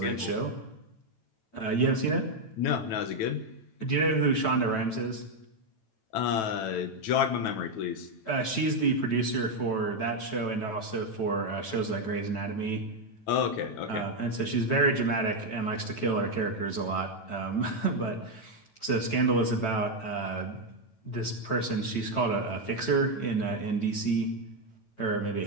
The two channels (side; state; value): right; late; 9.1 ms